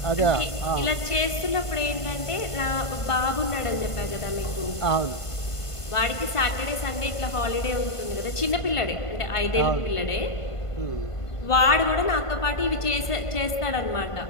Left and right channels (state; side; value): late; right; 1.5 ms